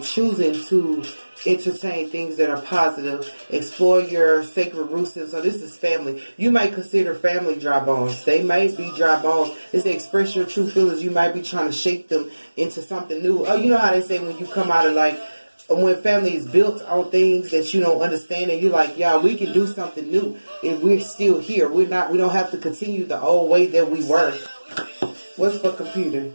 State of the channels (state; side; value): inverted; both; correlation -1.00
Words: choosing to entertain things that are positive. Explore your sacred roots. So this is family. You might consider family dry bones. They might be dry bones. It's to express your true feelings. You might be trying to shape them into something new. Oh, you know how they say when you come out of when family is built on things that you don't understand, and you're like, yeah, we can do something new, and we're still here. We don't have to continue the old way that we were. What's for computer?